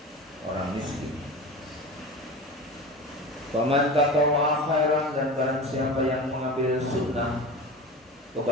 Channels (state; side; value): normal; both; correlation 0.31